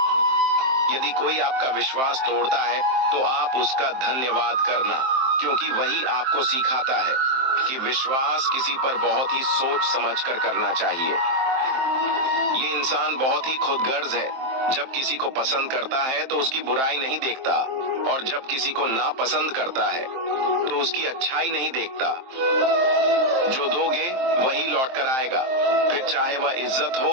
यदि कोई आपका विश्वास तोड़ता है तो आप उसका धन्यवाद करना, क्योंकि वही आपको सिखाता है कि विश्वास किसी पर बहुत ही सोच समझकर करना चाहिए। ये इंसान बहुत ही खुदगर्ज है। जब किसी को पसंद करता है तो उसकी बुराई नहीं देखता, और जब किसी को नापसंद करता है तो उसकी अच्छाई नहीं देखता। जो दोगे वही लौट कर आएगा, फिर चाहे वह इज्जत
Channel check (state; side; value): late; left; 23 ms